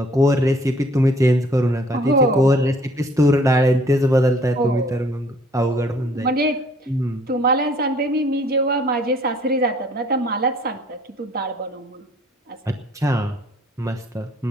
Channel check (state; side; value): normal; both; correlation 0.58